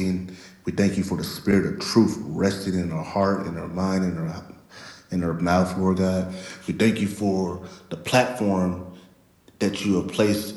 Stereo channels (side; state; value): both; identical; correlation 1.00